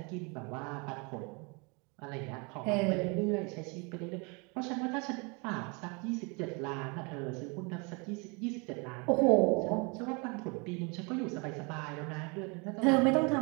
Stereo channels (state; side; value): quieter; left; 31.1 dB